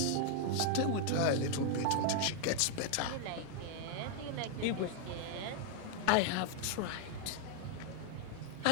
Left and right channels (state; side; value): different; both; correlation 0.00